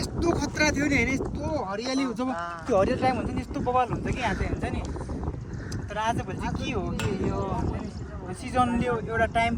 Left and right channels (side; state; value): both; identical; correlation 1.00